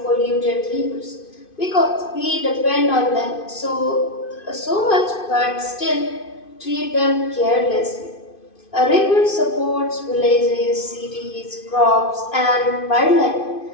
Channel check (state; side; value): late; right; 2.5 ms